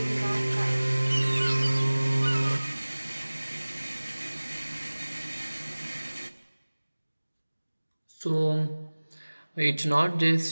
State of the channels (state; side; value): inverted; both; correlation -1.00